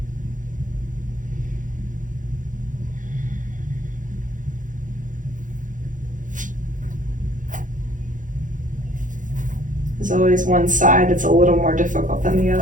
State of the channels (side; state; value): left; late; 0.38 ms